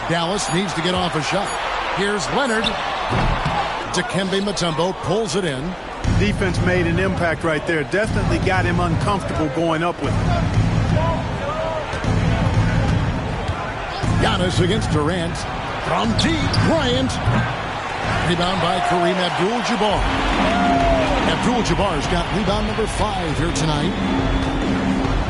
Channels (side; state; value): both; identical; correlation 1.00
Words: Dallas needs to get off a shot. Here's Leonard. Dikembe Mutombo pulls it in. Defense made an impact right there. Definitely got him uncomfortable going up with it. Giannis against Durant. From deep, Bryant. Rebound by Kareem Abdul-Jabbar. Abdul-Jabbar's got rebound number 5 here tonight.